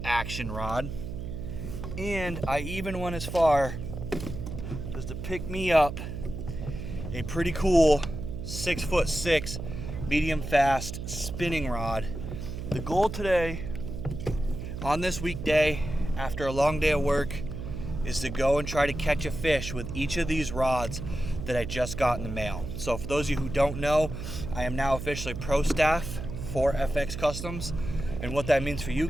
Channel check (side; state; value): right; noise; hum, 7 dB below the sound